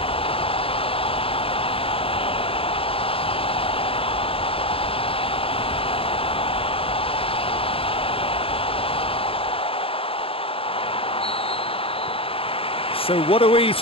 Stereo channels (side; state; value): right; late; 0.27 ms